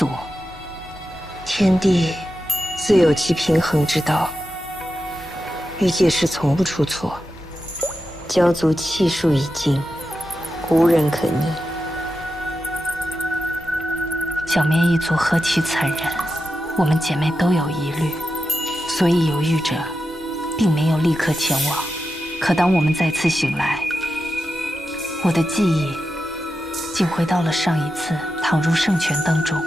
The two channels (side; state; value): both; normal; correlation 0.89